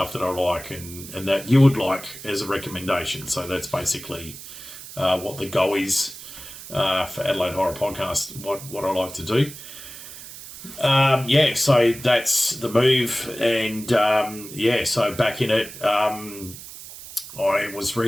that I like and that you would like as a recommendation. So that's basically what the goal is for Adelaide Horror Podcast, what I like to do. So that's the move, and so back in it. I was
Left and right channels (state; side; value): noise; right; hiss, 14 dB below the sound